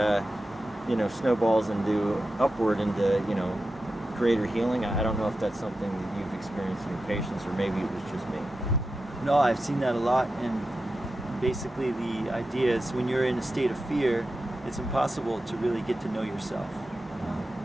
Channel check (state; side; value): normal; both; correlation 0.91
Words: snowballs into upward into greater healing. I don't know if that's something that you've experienced in your patients, or maybe it was just me. No, I've seen that a lot, and basically the idea is when you're in a state of fear, it's impossible to really get to know yourself,